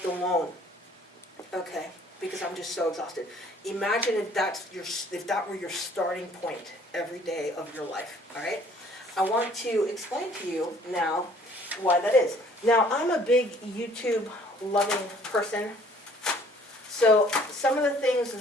alone, okay? Because I'm just so exhausted. Imagine if that were your starting point every day of your life, all right? I want to explain to you now why that is. Now, I'm a big YouTube-loving person, so some of the things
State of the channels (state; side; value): normal; both; correlation 0.57